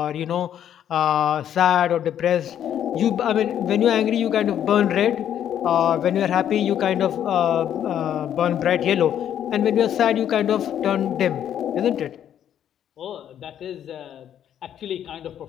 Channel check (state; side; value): quieter; right; 10.0 dB